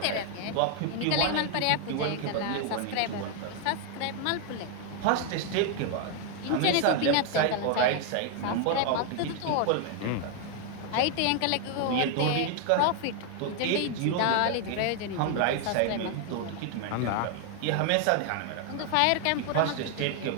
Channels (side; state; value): both; different; correlation 0.00